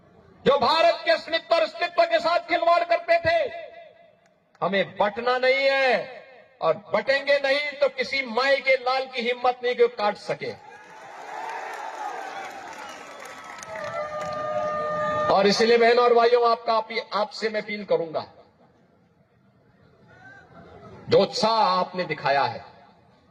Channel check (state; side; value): identical; both; correlation 1.00